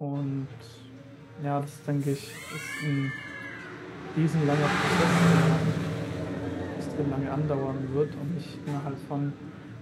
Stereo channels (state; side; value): identical; both; correlation 1.00